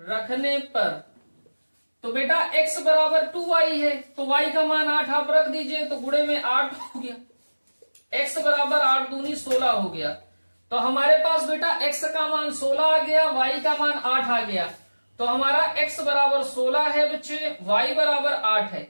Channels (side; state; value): both; inverted; correlation -1.00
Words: तो बेटा x बराबर 2y है, तो y का मान 8 आप रख दीजिए, तो गुणे में 8 हो गया, x बराबर 8 दूनी 16 हो गया। तो हमारे पास बेटा x का मान 16 आ गया, y का मान 8 आ गया। तो हमारा x बराबर 16 है बच्चे, y बराबर 8 है।